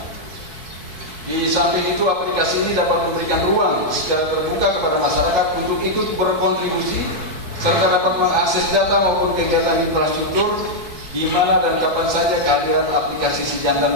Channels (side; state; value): left; late; 4.6 ms